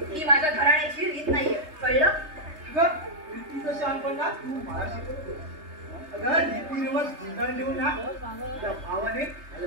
ही माझ्या घराण्याची रीत नाहीये, कळलं? रीतीचं शहाणपणा तू मला शिकवतो. अगं रीतीरिवाज गुंडाळून देऊन ना त्या भावाने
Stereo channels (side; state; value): left; late; 3.3 ms